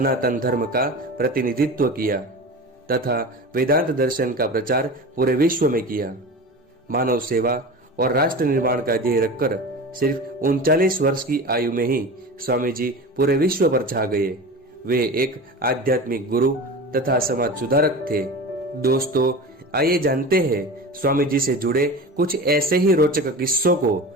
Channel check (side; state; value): both; normal; correlation 0.31